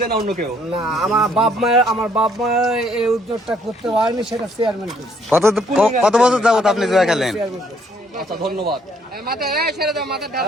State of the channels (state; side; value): normal; both; correlation 0.66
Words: না অন্য কেউ? না, আমার বাপ মা এই উদ্যোগটা করতে পারেনি, সেটা চেয়ারম্যান করছে। কত বছর যাবত আপনি জুয়া খেলেন? আচ্ছা, ধন্যবাদ।